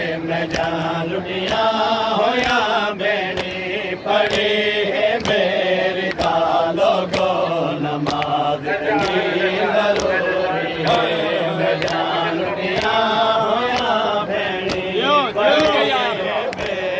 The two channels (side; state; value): both; identical; correlation 1.00